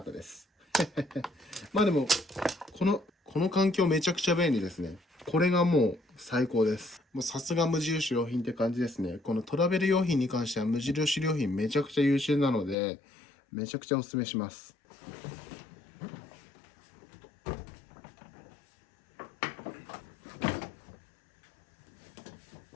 たです。まあでも、この環境めちゃくちゃ便利ですね。これがもう最高です。もうさすが無印良品って感じですね。このトラベル用品に関しては無印良品めちゃくちゃ優秀なので、めちゃくちゃおすすめします。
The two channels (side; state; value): right; drops out; at 12.8 s